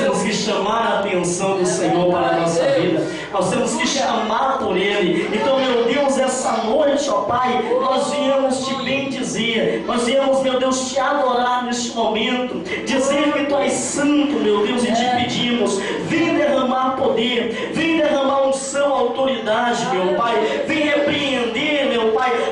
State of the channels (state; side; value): identical; both; correlation 1.00